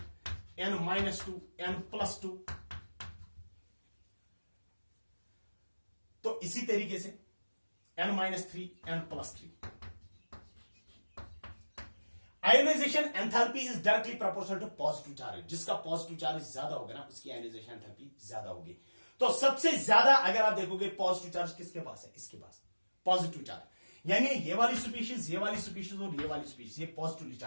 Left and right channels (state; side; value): inverted; both; correlation -1.00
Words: n-2, n+2, तो इसी तरीके से n-3, n+3। Ionization enthalpy is directly proportional to positive charge, जिसका पॉजिटिव चार्ज ज्यादा होगा ना उसकी आयोनाइजेशन एंथैल्पी ज्यादा होगी। तो सबसे ज्यादा अगर आप देखोगे पॉजिटिव चार्ज किसके पास है? इसके पास पॉजिटिव चार्ज, यानी ये वाली स्पीशीज, ये वाली स्पीशीज और ये वाली स्पीशीज, ये पॉजिटिवली